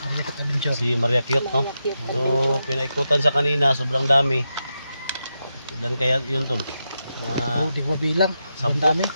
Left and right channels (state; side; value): inverted; both; correlation -0.87